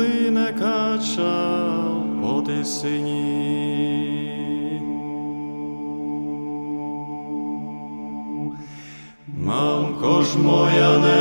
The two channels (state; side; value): inverted; both; correlation -1.00